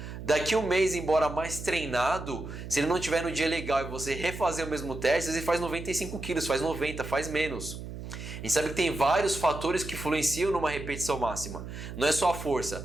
Daqui um mês, embora mais treinado, se ele não tiver no dia legal e você refazer o mesmo teste, ele faz 95 quilos, faz 90, faz menos. A gente sabe que tem vários fatores que influenciam numa repetição máxima. Não é só a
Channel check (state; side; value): noise; right; hum, 9 dB below the sound